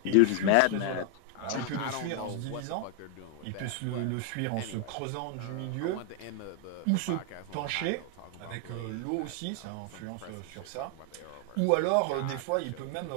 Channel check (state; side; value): different; both; correlation 0.00